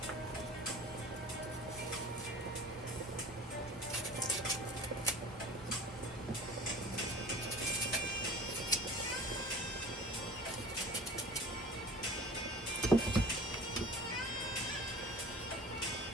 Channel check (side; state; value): both; normal; correlation 0.43